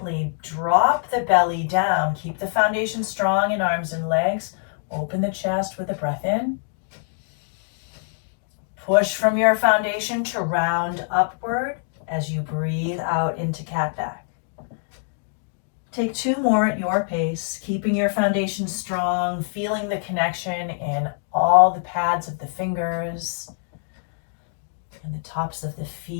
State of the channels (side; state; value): right; silent; digital silence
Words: drop the belly down. Keep the foundation strong in arms and legs. Open the chest with a breath in. Push from your foundation to round upward as you breathe out into cat back. Take 2 more at your pace, keeping your foundation strong, feeling the connection in all the pads of the fingers and the tops of the